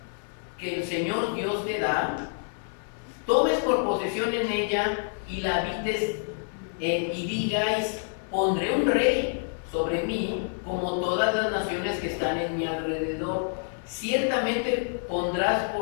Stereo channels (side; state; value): right; silent; 55 dB below the other